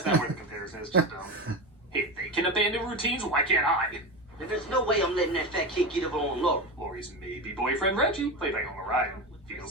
not worth the comparison, it's just dumb. Hey, if they can abandon routines, why can't I? And there's no way I'm letting that fat kid get up on Laura. Lori's maybe boyfriend Reggie, played by Homer Ryan,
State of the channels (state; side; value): normal; both; correlation 0.21